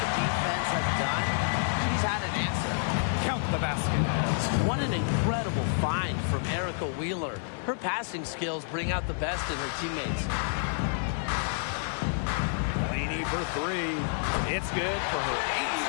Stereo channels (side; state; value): right; silent; 59 dB below the other